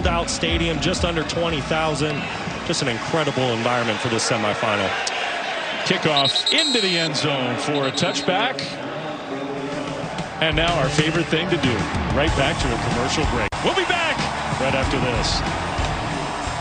out stadium, just under 20,000. Just an incredible environment for this semifinal. Kickoff into the end zone for a touchback. And now our favorite thing to do, right back to a commercial break. We'll be back right after this.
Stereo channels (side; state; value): both; identical; correlation 1.00